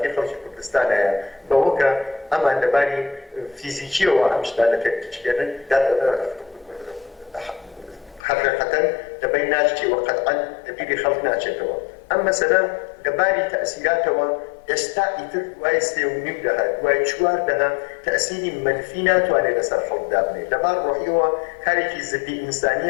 خەڵکی کوردستانەیە بەوە کە ئەمان لەباری فیزیکیەوە ئەم شتانە تێکچێنن حقیقەتەن لەبەر ناچێتەوە قەتعەن لەبیری خەڵک ناچێتەوە ئەم مەسەلە لەباری تەئسیراتەوە ئێستا ئیتر دوای 3.5 دەها دوای 4 دەها تەئسیری منفی ناتوانێت لەسەر خەڵکدا بنێت لەبار ڕۆحیەوە کارێکی زدی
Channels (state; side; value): drops out; right; at 8.2 s